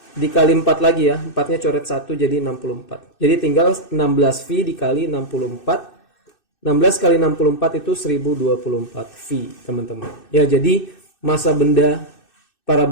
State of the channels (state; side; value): late; right; 2.6 ms